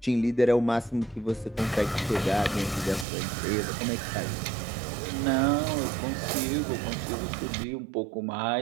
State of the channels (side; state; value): left; drops out; at 3.1 s